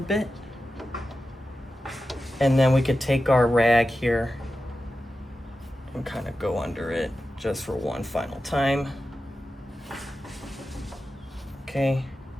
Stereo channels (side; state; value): both; normal; correlation 0.92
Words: And then we could take our rag here and kind of go under it just for one final time. Okay.